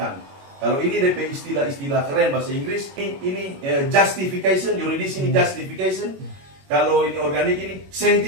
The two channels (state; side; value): late; left; 21 ms